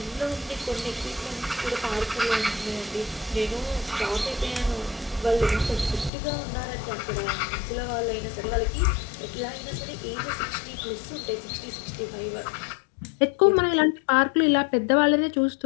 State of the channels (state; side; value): drops out; right; at 6.1 s